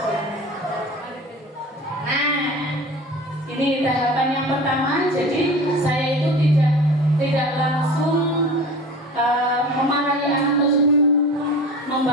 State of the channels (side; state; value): both; normal; correlation 0.37